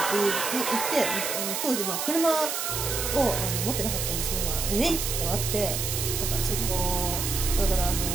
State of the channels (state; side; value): noise; right; hiss, 2 dB below the sound